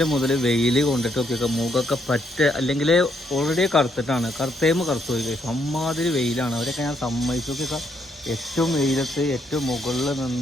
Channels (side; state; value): both; normal; correlation 0.74